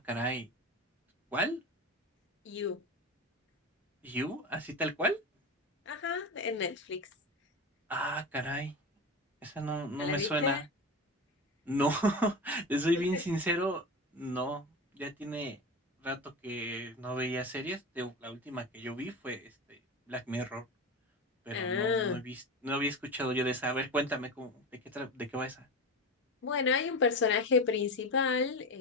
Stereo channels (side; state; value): both; normal; correlation 0.24